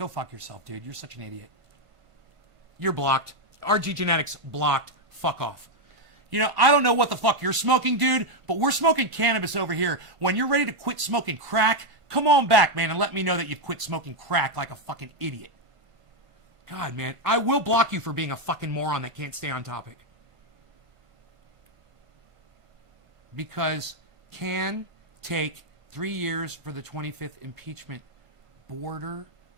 fuck yourself, dude. You're such an idiot. You're blocked. RG Genetics blocked. Fuck off. You know, I don't know what the fuck you're smoking, dude, but we're smoking cannabis over here. When you're ready to quit smoking crack, come on back, man, and let me know that you've quit smoking crack like a fucking idiot. God, man, I will block you for being a fucking moron that can't stay on topic. Because can take 3 years for the 25th impeachment. Border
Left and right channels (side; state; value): left; late; 1.5 ms